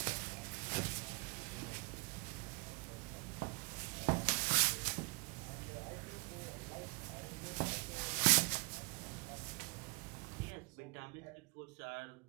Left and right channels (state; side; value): quieter; left; 31.3 dB